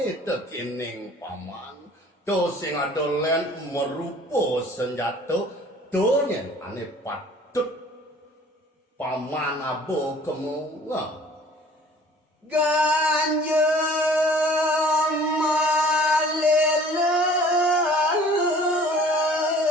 tekining paman. To sing adolen merupo senjata donyen ane patut paman abo kemunga. ganja malela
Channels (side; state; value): both; normal; correlation 0.50